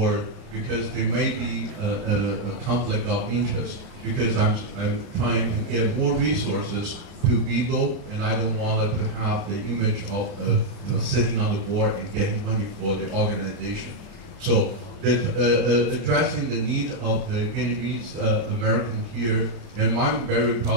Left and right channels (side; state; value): left; late; 30 ms